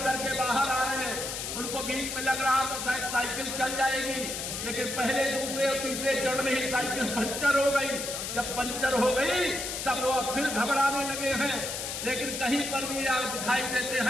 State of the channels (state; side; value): noise; left; hiss, 4 dB below the sound